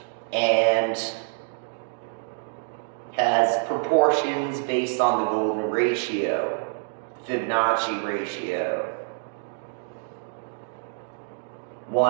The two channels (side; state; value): left; silent; digital silence